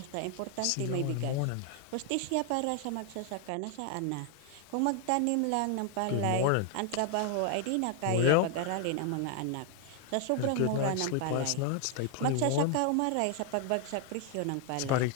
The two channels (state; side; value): different; both; correlation 0.00